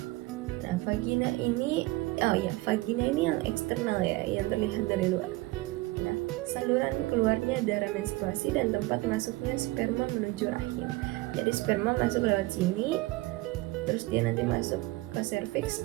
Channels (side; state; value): left; quieter; 20.5 dB